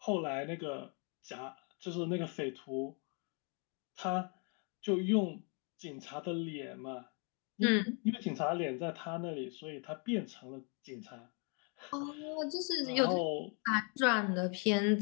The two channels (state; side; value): quieter; right; 37.6 dB